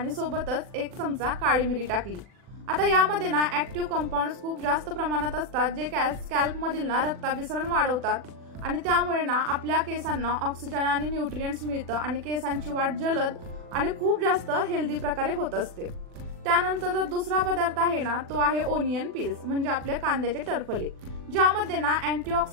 सोबतच 1 चमचा काळी मिरी टाकली। आता यामध्ये ना ऍक्टिव्ह कंपाऊंड्स खूप जास्त प्रमाणात असतात जे स्कॅल्प मधील ना रक्ताभिसरण वाढवतात आणि त्यामुळे ना आपल्या केसांना ऑक्सिजन आणि न्यूट्रिएंट्स मिळतं आणि केसांची वाढ जलद आणि खूप जास्त हेल्दी प्रकारे होत असते। त्यानंतर जो दुसरा पदार्थ आहे ना तो आहे ओनियन पील्स म्हणजे आपले कांद्याचे टरफले, ज्यामध्ये ना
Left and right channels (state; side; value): late; left; 40 ms